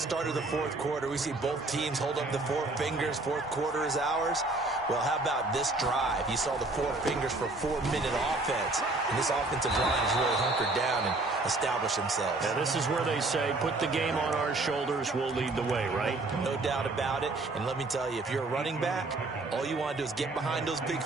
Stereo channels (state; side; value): quieter; left; 3.1 dB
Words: of the 4th quarter, we see both teams hold up the 4 fingers, 4th quarter is ours. Well, how about this drive? You saw the 4 fingers for 4-minute offense. And this offensive line has really hunkered down and established themselves. And this is where they say, put the game on our shoulders, we'll lead the way, right? No doubt about it. And let me tell you, if you're a running back, all you want to do is get behind those big